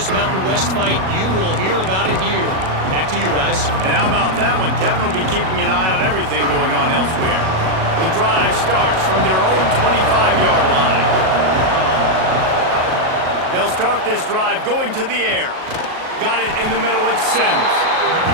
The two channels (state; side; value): late; left; 37 ms